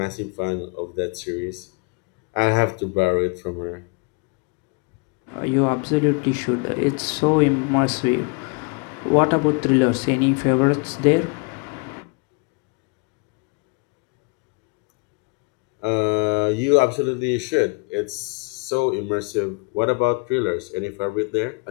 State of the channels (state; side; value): quieter; right; 31.8 dB